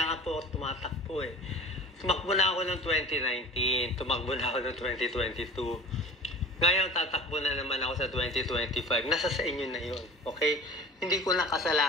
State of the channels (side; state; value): both; normal; correlation 0.40